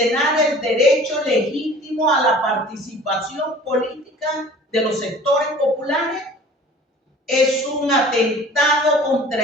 el derecho legítimo a la participación política de los sectores populares. Es un atentado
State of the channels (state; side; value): normal; both; correlation 0.46